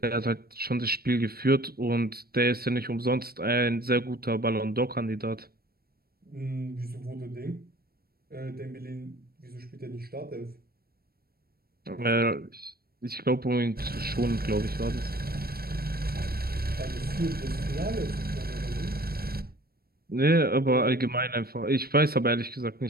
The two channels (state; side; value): late; left; 0.44 ms